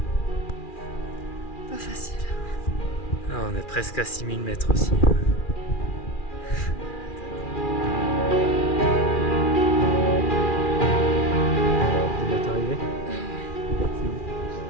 Pas facile. Ah, on est presque à 6000 mètres aussi. Tu vas t'arriver?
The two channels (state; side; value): late; right; 2.4 ms